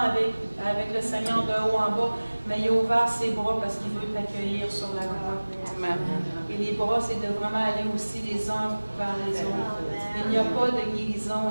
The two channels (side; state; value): both; inverted; correlation -1.00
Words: le Seigneur de haut en bas, mais il a ouvert ses bras parce qu'il veut t'accueillir sur la croix. Amen. Et les bras, c'est de vraiment aller aussi les uns vers les autres. Il n'y a pas de guérison.